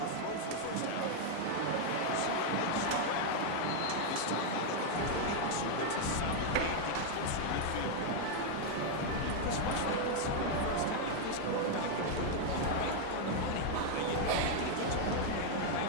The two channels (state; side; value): different; both; correlation 0.00